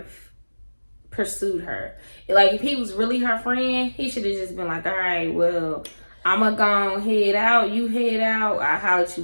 pursued her. Like, if he was really her friend, he should have just been like, all right, well, I'ma go head out, you head out, I'll holler at you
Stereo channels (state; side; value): inverted; both; correlation -1.00